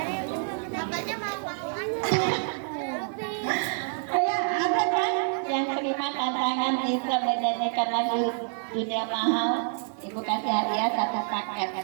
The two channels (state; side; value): silent; left; 60 dB below the other